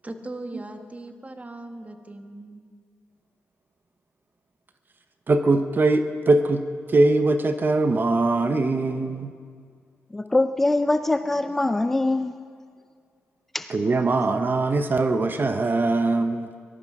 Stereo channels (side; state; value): both; normal; correlation 0.90